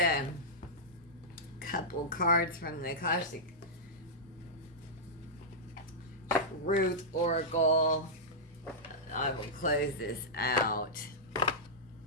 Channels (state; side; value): normal; both; correlation -0.11